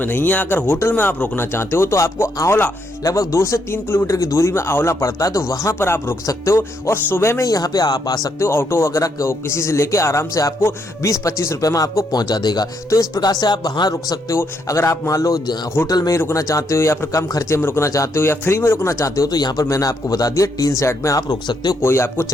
नहीं है। अगर होटल में आप रुकना चाहते हो तो आपको आंवला लगभग 2 से 3 किलोमीटर की दूरी में आंवला पड़ता है, तो वहां पर आप रुक सकते हो। और सुबह में यहाँ पे आप आ सकते हो, ऑटो वगैरह किसी से लेके आराम से आपको 20-25 रुपए में आपको पहुंचा देगा। तो इस प्रकार से आप वहां रुक सकते हो। अगर आप मान लो होटल में ही रुकना चाहते हो या फिर कम खर्चे में रुकना चाहते हो या फ्री में रुकना चाहते हो, तो यहाँ पर मैंने आपको बता दिया टीन सेट में आप रुक सकते हो, कोई आपको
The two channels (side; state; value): both; normal; correlation 0.76